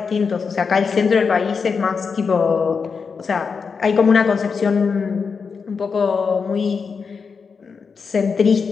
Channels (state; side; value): quieter; right; 5.5 dB